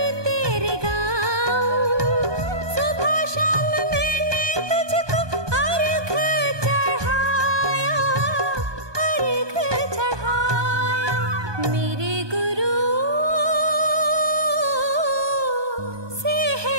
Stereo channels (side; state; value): left; late; 1.2 ms